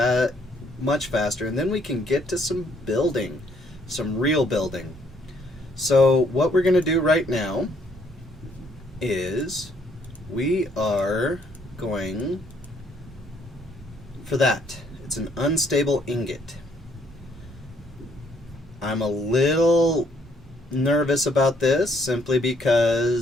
much faster, and then we can get to some building, some real building. So what we're going to do right now is we are going for that. It's an unstable ingot. I'm a little nervous about this simply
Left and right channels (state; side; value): normal; both; correlation 0.67